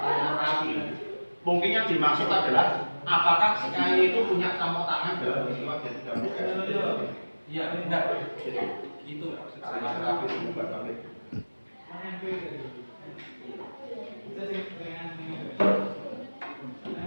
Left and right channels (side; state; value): both; inverted; correlation -1.00